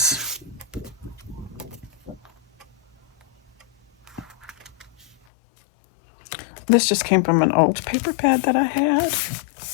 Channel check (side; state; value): right; drops out; at 5.2 s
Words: this just came from an old paper pad that I had.